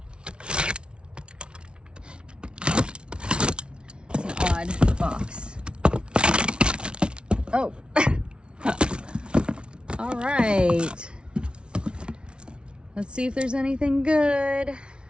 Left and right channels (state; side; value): late; left; 0.057 ms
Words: It's an odd box. Oh. All right. Let's see if there's anything good.